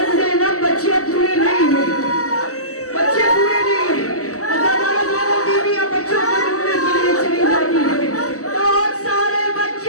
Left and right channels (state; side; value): late; right; 0.66 ms